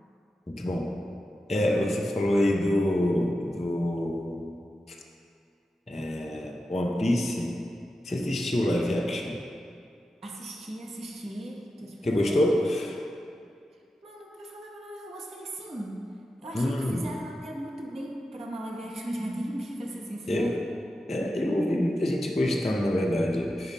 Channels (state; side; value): normal; both; correlation 0.90